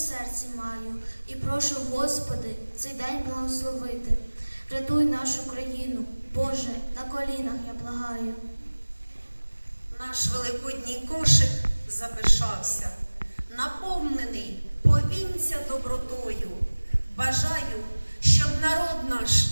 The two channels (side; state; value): both; inverted; correlation -1.00